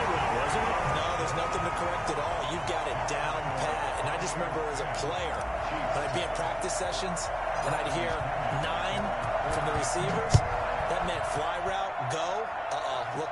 route, wasn't it? No, there's nothing to correct at all. You've got it down pat. And I just remember as a player, when I'd be at practice sessions, and I'd hear 9 from the receivers, that meant fly route, go,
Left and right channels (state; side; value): identical; both; correlation 1.00